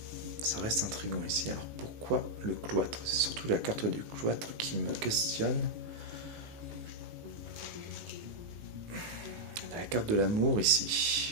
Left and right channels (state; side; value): late; left; 19 ms